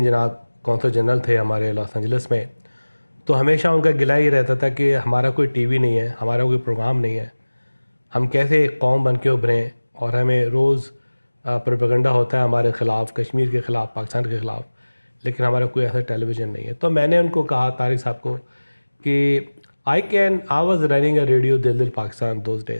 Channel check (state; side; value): inverted; both; correlation -1.00